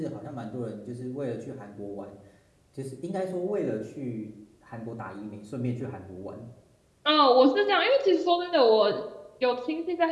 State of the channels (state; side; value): identical; both; correlation 1.00